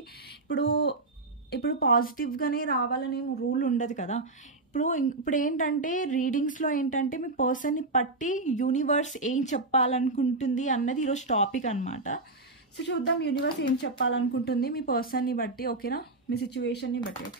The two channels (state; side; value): quieter; left; 3.1 dB